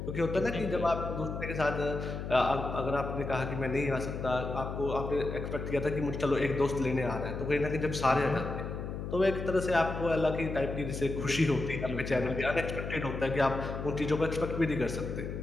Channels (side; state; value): left; noise; hum, 6 dB below the sound